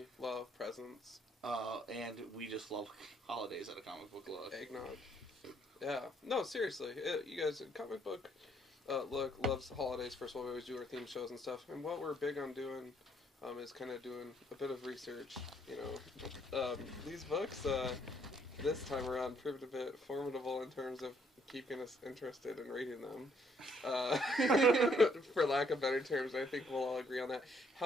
love, presents. And we just love holidays at a comic book look. Eggnog. Yeah. No, seriously. You guys, comic book look loves holidays. First of all, we always do our theme shows and stuff. And what we're big on doing is kind of doing a bit of research. These books this time around proved a bit formidable in terms of keeping us interested in reading them. For lack of better terms, I think we'll all agree on that.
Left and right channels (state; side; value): normal; both; correlation 0.68